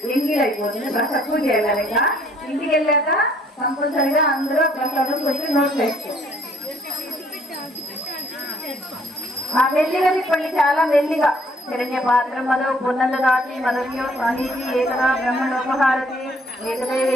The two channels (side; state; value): both; normal; correlation 0.63